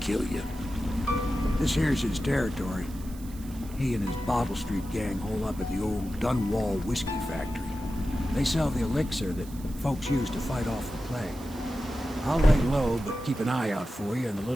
kill you. This here's his territory. He and his Bottle Street gang hole up at the old Dunwall whiskey factory. They sell the elixir that folks use to fight off the plague. I'll lay low, but keep an eye out for you and the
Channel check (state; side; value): noise; right; hiss, 20 dB below the sound